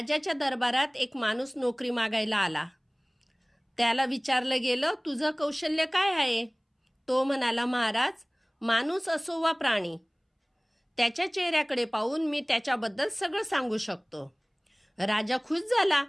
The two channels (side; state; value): both; identical; correlation 1.00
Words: दरबारात एक माणूस नोकरी मागायला आला। त्याला विचारलं गेलं, तुझं कौशल्य काय आहे? तो म्हणाला, महाराज, माणूस असो वा प्राणी, त्याच्या चेहऱ्याकडे पाहून मी त्याच्याबद्दल सगळं सांगू शकतो। राजा खुश झाला